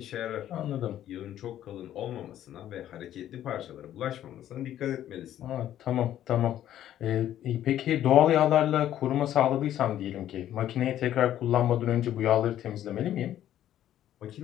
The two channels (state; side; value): quieter; right; 11.8 dB